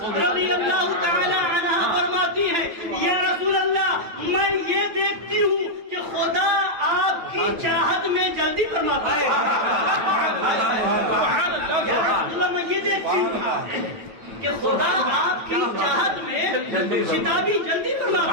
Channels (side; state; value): left; late; 9.1 ms